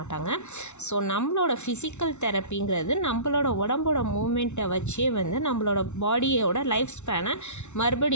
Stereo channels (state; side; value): late; right; 0.82 ms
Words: ஸோ நம்மளோட ஃபிசிக்கல் தெரப்பிங்கிறது நம்மளோட உடம்போட மூமெண்ட்டை வச்சே நம்மளோட பாடியோட லைஃப் ஸ்பேனை